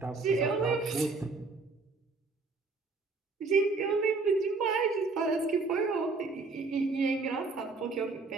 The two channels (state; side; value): quieter; left; 3.9 dB